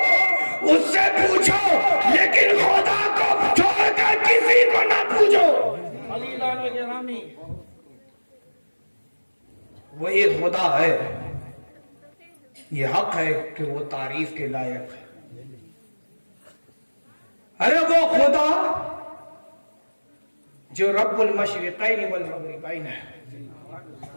اس سے پوچھو، لیکن خدا کو چھوڑ کر کسی کو نہ پوچھو۔ وہی خدا ہے، یہ حق ہے کہ وہ تعریف کے لائق ہے۔ ارے وہ خدا جو رب المشرقین والمغربین ہے،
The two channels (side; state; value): both; inverted; correlation -1.00